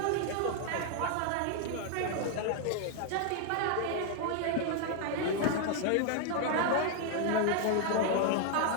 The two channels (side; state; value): both; different; correlation 0.00